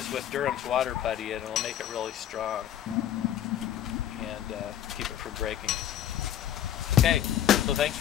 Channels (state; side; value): quieter; right; 11.0 dB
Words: with Durham's water putty and it'll make it really strong and keep it from breaking. Okay, so thanks